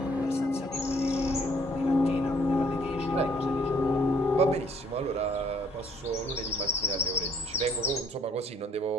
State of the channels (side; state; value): both; normal; correlation 0.63